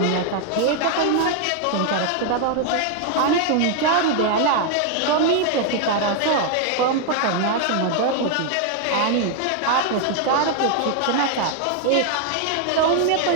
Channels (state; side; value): different; both; correlation 0.00